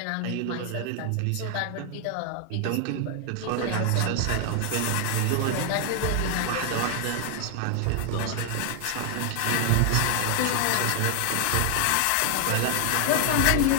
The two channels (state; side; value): different; both; correlation 0.00